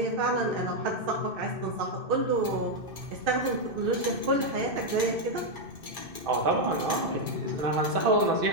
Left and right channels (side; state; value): left; late; 2.6 ms